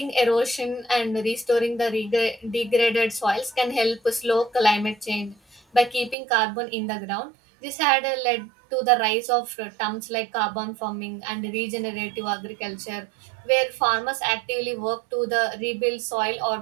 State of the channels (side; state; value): left; drops out; at 6.2 s